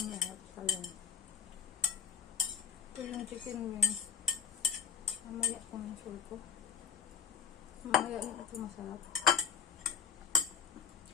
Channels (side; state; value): right; quieter; 7.7 dB